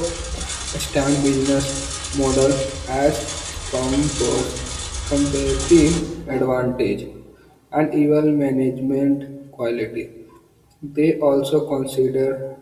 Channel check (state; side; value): identical; both; correlation 1.00